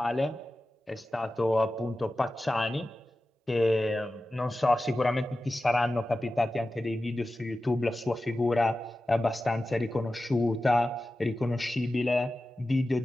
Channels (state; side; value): normal; both; correlation 0.94